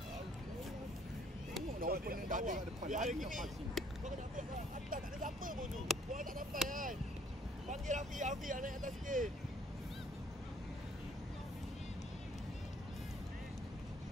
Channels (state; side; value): normal; both; correlation 0.61